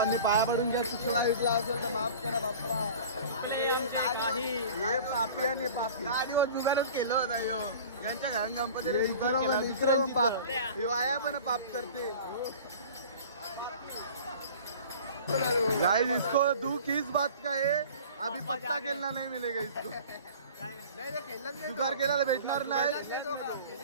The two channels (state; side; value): inverted; both; correlation -0.42